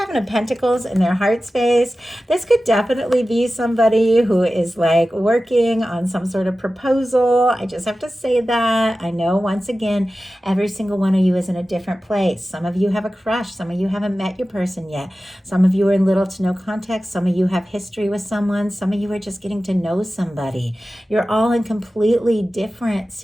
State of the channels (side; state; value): both; normal; correlation 0.95